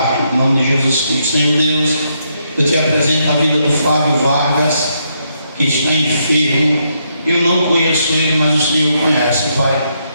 gente, em nome de Jesus Cristo. Senhor Deus, eu te apresento a vida do Flávio Vargas, que está enfermo. Eu não conheço ele, mas o Senhor conhece, Pai.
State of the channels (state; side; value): inverted; both; correlation -0.77